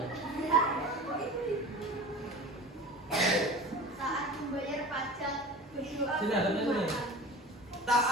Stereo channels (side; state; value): both; normal; correlation 0.36